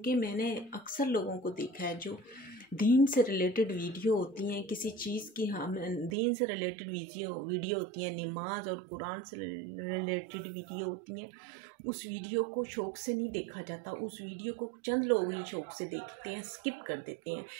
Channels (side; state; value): left; drops out; at 6.2 s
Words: मैंने अक्सर लोगों को देखा है जो दीन से रिलेटेड वीडियो होती हैं, किसी चीज़ की हम दीन से रिलेटेड वीडियो होती हैं, नमाज और कुरान से रिलेटेड वीडियो होती हैं, उस वीडियो को शौक़ से नहीं देखा जाता। उस वीडियो को चंद लोग ही शौक़ से देखते हैं, स्किप कर देते हैं।